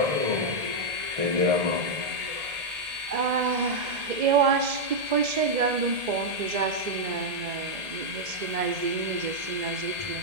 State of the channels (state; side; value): late; left; 2.0 ms